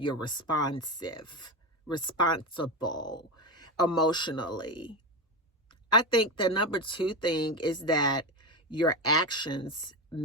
responsive, responsible emotionally. I think the number 2 thing is that your actions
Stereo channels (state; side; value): normal; both; correlation 0.17